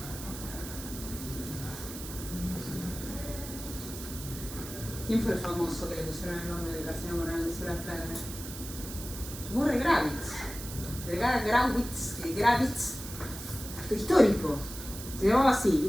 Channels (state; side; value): noise; right; hiss, 11 dB below the sound